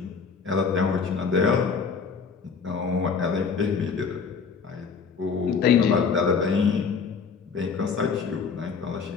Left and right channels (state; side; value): quieter; right; 5.6 dB